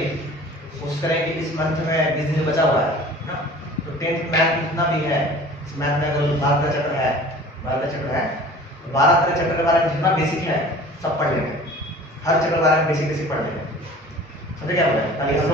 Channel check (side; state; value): both; normal; correlation 0.45